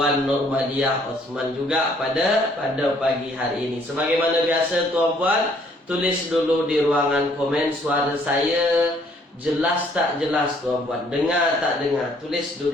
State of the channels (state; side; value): normal; both; correlation 0.63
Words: Nurmadiah Osman juga pada pagi hari ini. Sebagaimana biasa tuan-puan, tulis dulu di ruangan komen suara saya jelas tak jelas tuan-puan, dengar tak dengar, tulis